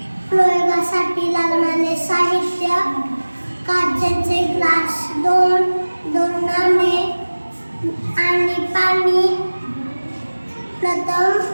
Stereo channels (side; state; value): both; inverted; correlation -1.00